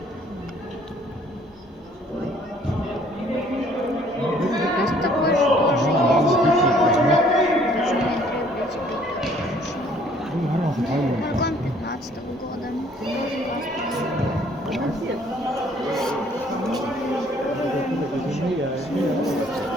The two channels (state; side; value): normal; both; correlation 0.59